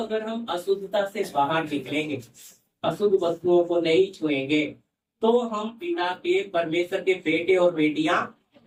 हम अशुद्धता से बाहर निकलेंगे, अशुद्ध वस्तुओं को नहीं छुएंगे, तो हम पिता के, परमेश्वर के बेटे और बेटियां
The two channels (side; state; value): both; identical; correlation 1.00